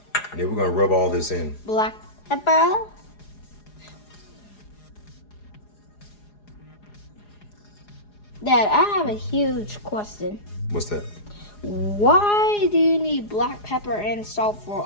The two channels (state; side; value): late; right; 4.8 ms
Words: And then we're gonna rub all this in. Black pepper. Dad, I have a huge question. What's that? Why do you need black pepper and salt for